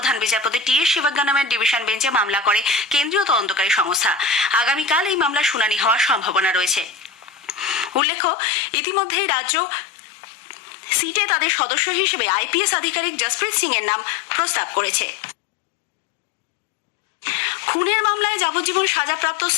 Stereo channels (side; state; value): right; drops out; at 8.0 s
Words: বিচারপতি TS শিবজ্ঞানমের ডিভিশন বেঞ্চে মামলা করে কেন্দ্রীয় তদন্তকারী সংস্থা। আগামীকাল এই মামলার শুনানি হওয়ার সম্ভাবনা রয়েছে। উল্লেখ্য, ইতিমধ্যেই রাজ্য সিটে তাদের সদস্য হিসেবে IPS আধিকারিক জসপ্রীত সিং এর নাম প্রস্তাব করেছে। খুনের মামলায় যাবজ্জীবন সাজাপ্রাপ্ত